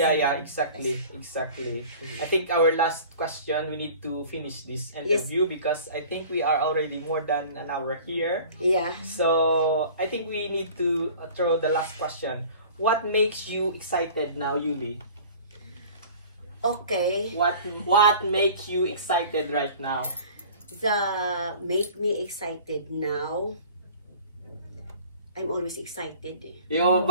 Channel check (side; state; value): both; inverted; correlation -0.45